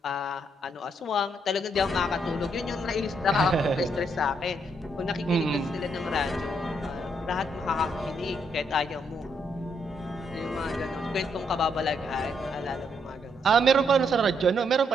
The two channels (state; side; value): normal; both; correlation 0.74